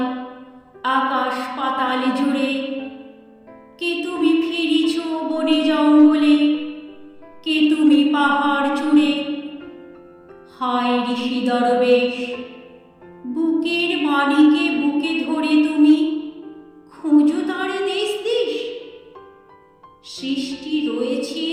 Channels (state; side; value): identical; both; correlation 1.00